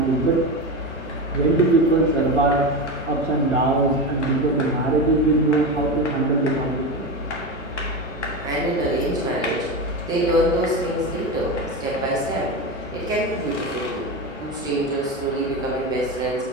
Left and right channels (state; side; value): normal; both; correlation 0.20